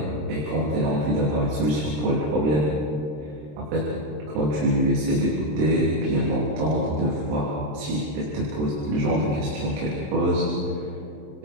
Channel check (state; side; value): late; left; 27 ms